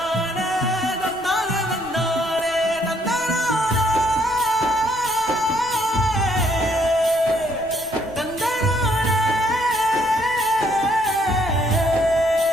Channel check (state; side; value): noise; right; rumble, 21 dB below the sound